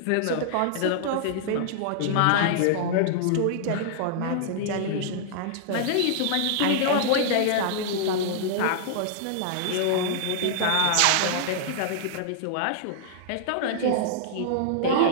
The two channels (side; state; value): both; different; correlation -0.01